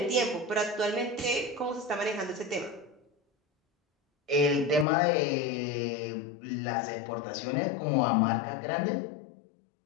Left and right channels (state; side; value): drops out; right; at 4.9 s